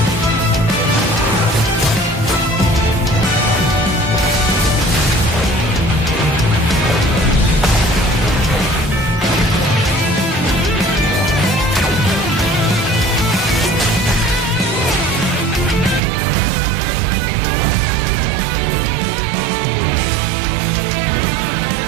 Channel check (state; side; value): drops out; left; at 16.0 s